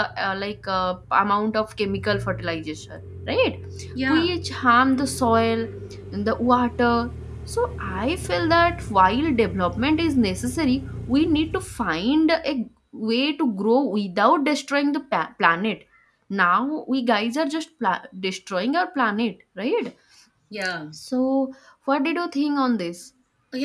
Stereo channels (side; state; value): both; identical; correlation 1.00